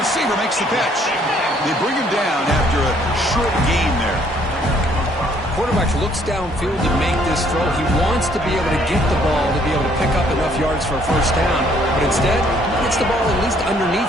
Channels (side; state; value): both; normal; correlation 0.64